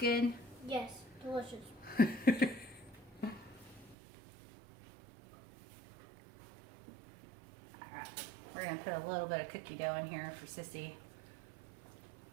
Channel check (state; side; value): drops out; left; at 4.0 s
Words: Yes, delicious. We're going to put a little bit of cookie dough in here for Sissy.